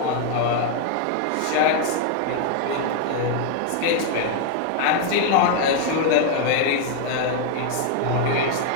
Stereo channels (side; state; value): both; different; correlation 0.00